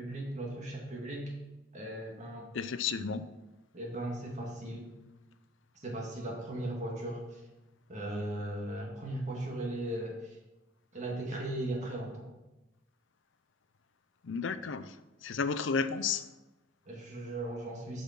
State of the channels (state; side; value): normal; both; correlation 0.43